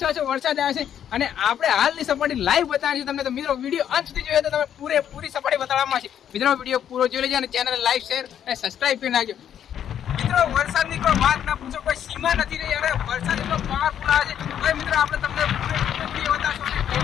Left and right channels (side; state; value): right; quieter; 9.6 dB